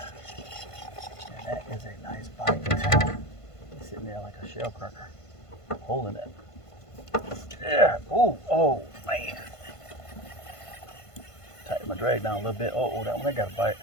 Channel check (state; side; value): late; right; 1.5 ms